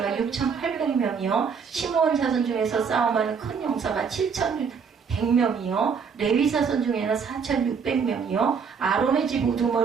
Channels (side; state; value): left; quieter; 6.1 dB